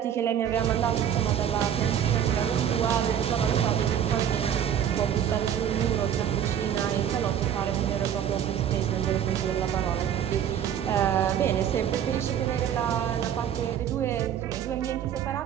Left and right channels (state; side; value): quieter; left; 9.4 dB